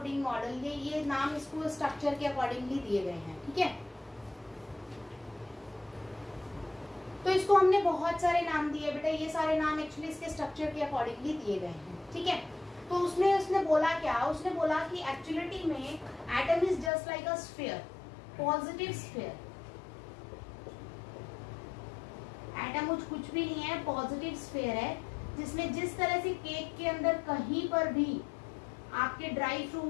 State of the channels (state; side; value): drops out; right; at 16.9 s